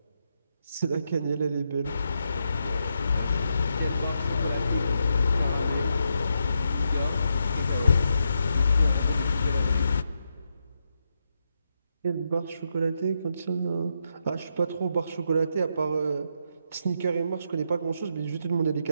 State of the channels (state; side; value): inverted; both; correlation -0.82